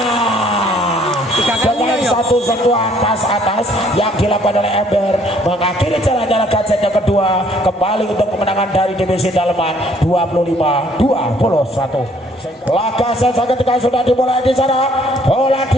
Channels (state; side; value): normal; both; correlation 0.62